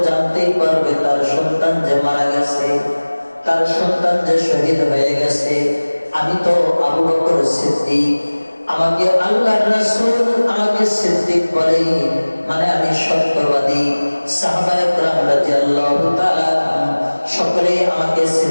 জানতেই পারবে তার সন্তান যে মারা গেছে, তার সন্তান যে শহীদ হয়ে গেছে। আমি তো আবু বকর সিদ্দিক, আমাকে আল্লাহর রাসূল আমাকে সিদ্দিক বলে, মানে আমি সত্যবাদী। সাহাবায়ে কেরাম রাদিয়াল্লাহু তাআলা সকলেই আমাকে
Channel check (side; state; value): both; inverted; correlation -1.00